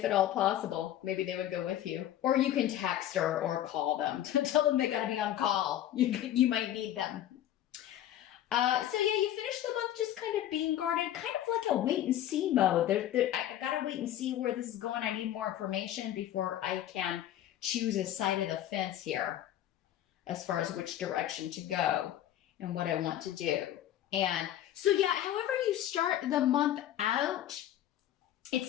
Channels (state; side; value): quieter; right; 12.2 dB